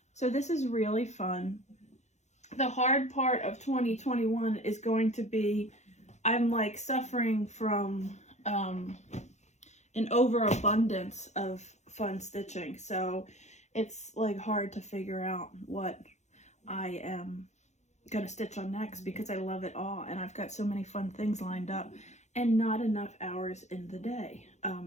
So this is really fun. The hard part of 2021 is going to be, I'm like suffering from an overabundance of fun stitching. So it's like hard to figure out what I am gonna stitch on next, because I love it all and I've got so many fun things lined up and not enough hours in the day.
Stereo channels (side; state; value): right; late; 0.33 ms